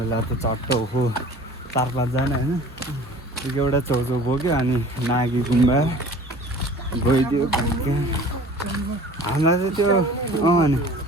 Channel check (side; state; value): both; normal; correlation 0.45